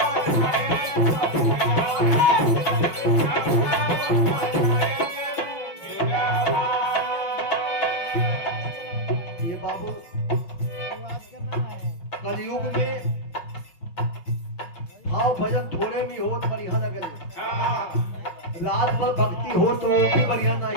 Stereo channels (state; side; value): late; right; 6.1 ms